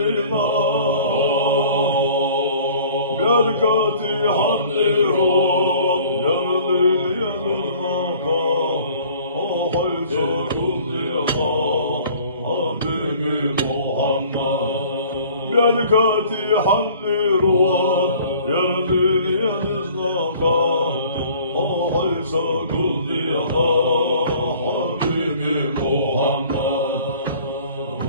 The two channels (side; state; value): both; inverted; correlation -0.51